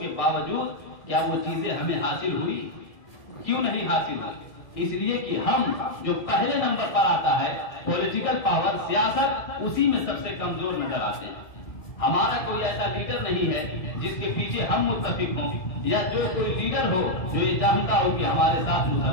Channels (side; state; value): right; late; 1.6 ms